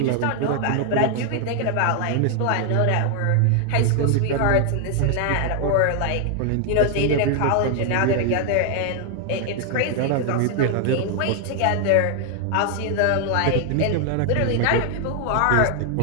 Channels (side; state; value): both; different; correlation 0.00